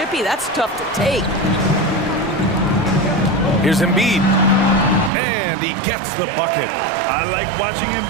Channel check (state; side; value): drops out; left; at 5.1 s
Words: That's tough to take. Here's Embiid. And he gets the bucket. I like watching